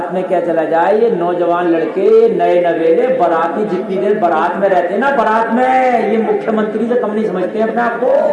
में क्या चला जाए, ये नौजवान लड़के नए नवेले बाराती जितनी देर बारात में रहते हैं ना, बारात में ये मुख्यमंत्री से कम नहीं समझते हैं अपने आप को।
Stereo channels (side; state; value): both; identical; correlation 1.00